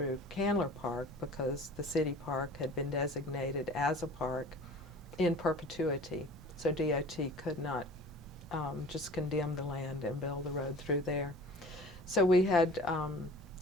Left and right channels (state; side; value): normal; both; correlation 0.44